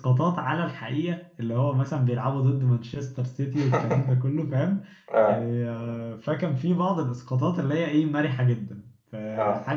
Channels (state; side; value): identical; both; correlation 1.00